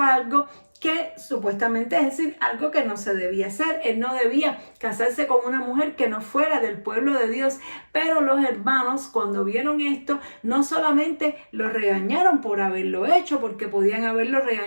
algo que supuestamente, es decir, algo que no se debía hacer. Él no debía casarse con una mujer que no fuera del pueblo de Dios. Pero los hermanos, cuando vieron esto, no solamente lo regañaron por haberlo hecho, porque podían haberlo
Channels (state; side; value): inverted; both; correlation -1.00